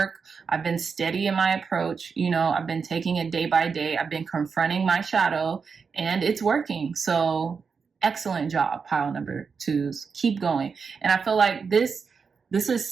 I've been steady in my approach. You know, I've been taking it day by day. I've been confronting my shadow, and it's working. So excellent job, pile number 2s. Keep going. And I feel like this is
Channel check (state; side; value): quieter; left; 5.5 dB